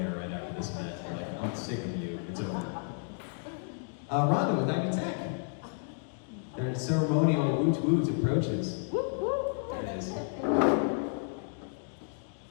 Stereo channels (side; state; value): right; silent; 57 dB below the other